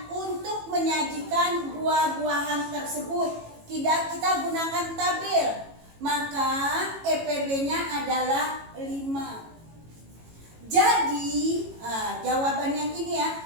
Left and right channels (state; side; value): late; left; 18 ms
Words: untuk menyajikan buah-buahan tersebut? Kita gunakan tabel. Maka EPB-nya adalah 5. Jadi, jawaban yang ini